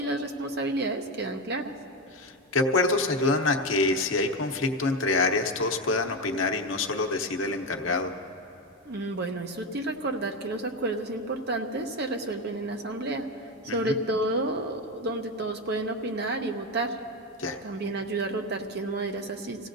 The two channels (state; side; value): normal; both; correlation 0.14